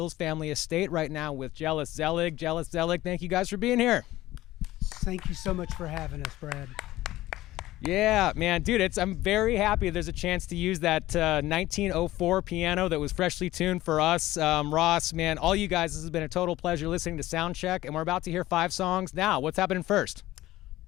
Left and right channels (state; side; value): quieter; right; 16.2 dB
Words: family estate, right now with Jealous Zelig. Jealous Zelig, thank you guys for being here. Thank you so much for having us, Brad. Yeah, man, dude, I'm very happy there's a chance to use that 1904 piano that was freshly tuned for us. Ross, man, all you guys, this has been a total pleasure listening to Soundcheck, and we're about to hear 5 songs. Now, what's happening first?